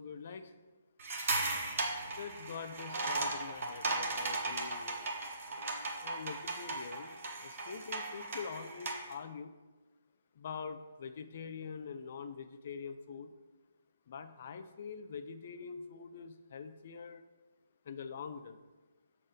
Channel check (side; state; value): both; inverted; correlation -0.59